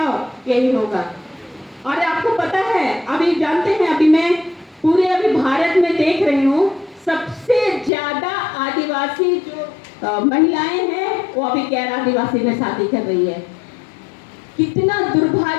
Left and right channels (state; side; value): drops out; right; at 7.9 s